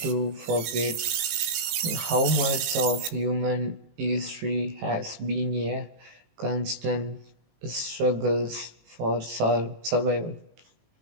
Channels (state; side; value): late; left; 19 ms